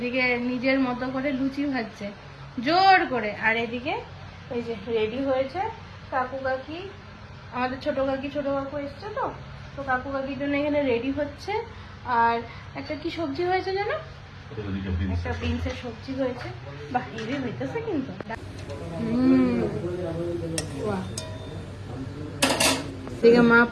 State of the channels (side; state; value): both; identical; correlation 1.00